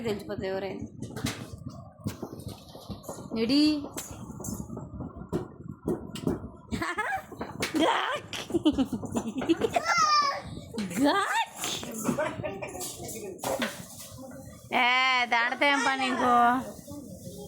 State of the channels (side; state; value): both; identical; correlation 1.00